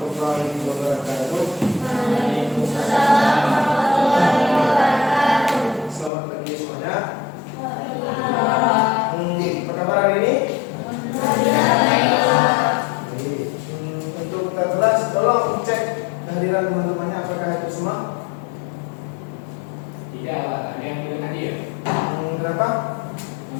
wabarakatuh. Waalaikumsalam warahmatullahi wabarakatuh. Selamat pagi semuanya. Waalaikumsalam. Apa kabar hari ini? Baiklah. Baik. Untuk kita kelas, tolong cek kehadiran teman-temannya apakah itu semua? Tidak, ada yang belum hadir. Berapa?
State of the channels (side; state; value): right; drops out; at 6.1 s